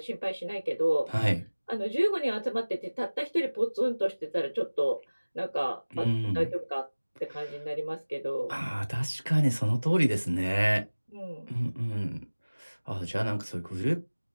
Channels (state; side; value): inverted; both; correlation -1.00